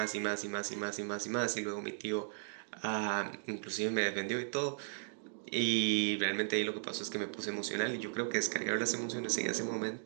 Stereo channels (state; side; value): silent; left; digital silence